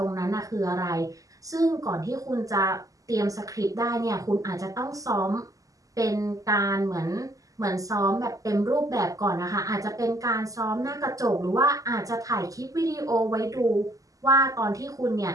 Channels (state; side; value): late; left; 0.17 ms